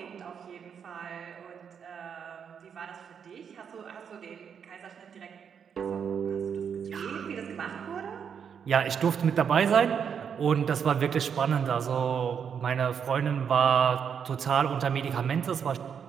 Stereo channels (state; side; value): quieter; left; 7.3 dB